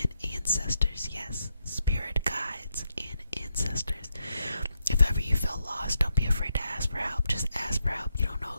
ancestors. Yes, spirit guides and ancestors. If ever you feel lost, don't be afraid to ask for help. Just ask for help. You don't know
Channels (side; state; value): both; inverted; correlation -0.82